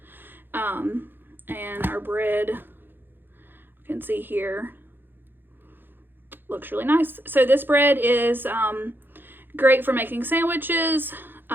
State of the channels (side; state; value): left; late; 0.098 ms